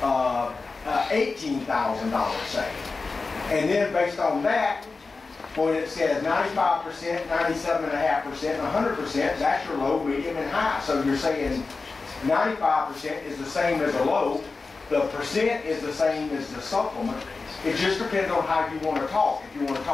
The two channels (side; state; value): right; quieter; 4.1 dB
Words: $18,000, say. And then based on that, when it says 95%, 97.5%, and 100%, that's your low, medium, and high. So you're saying 95% is the same as a low, the percent is the same as the supplement. It just depends on how you want to talk. If you want to